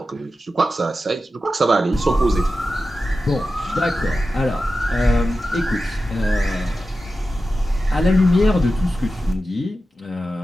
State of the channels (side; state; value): both; normal; correlation 0.92